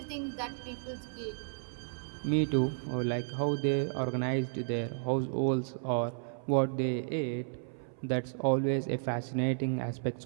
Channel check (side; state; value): left; silent; 56 dB below the other